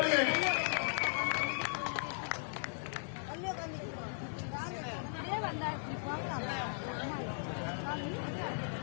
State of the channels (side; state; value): right; silent; 53 dB below the other